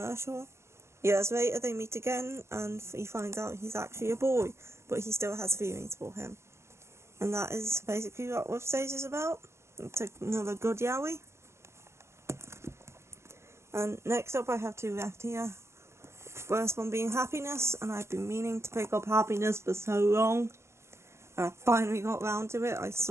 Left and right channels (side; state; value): left; late; 0.13 ms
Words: Years later they meet again and he finds out he's actually a boy, but he still has feelings for him. And that is basically what Rub Stage is about. It's another good yaoi. And next up I have 2 left here. First one being Happiness, and I've been meaning to pick up Happiness for so long. I finally got round to it. I